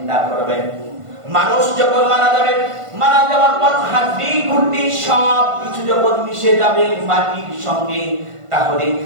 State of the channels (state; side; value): late; left; 1.5 ms